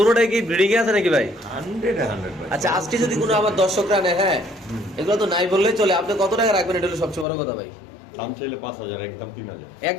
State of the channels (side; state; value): right; drops out; at 7.2 s